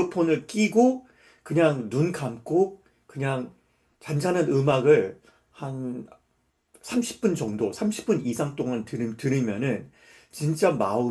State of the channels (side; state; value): both; identical; correlation 1.00